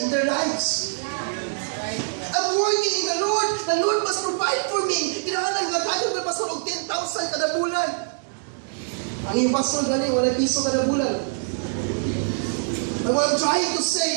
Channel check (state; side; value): silent; left; digital silence